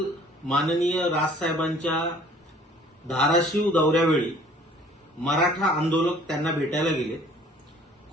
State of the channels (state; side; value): normal; both; correlation 0.54